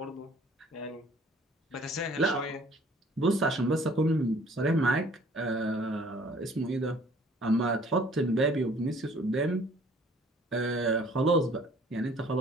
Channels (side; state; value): both; normal; correlation 0.55